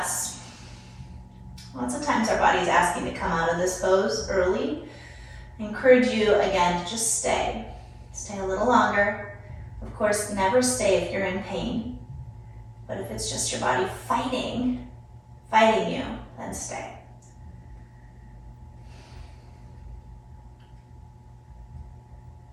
Lots of times our body's asking to come out of this pose early. I encourage you, again, to just stay. Stay a little longer. Of course, never stay if you're in pain. But if it's just your body fighting you, then stay.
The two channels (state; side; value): identical; both; correlation 1.00